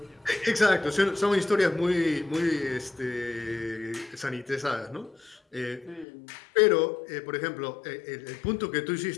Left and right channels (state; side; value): drops out; right; at 6.1 s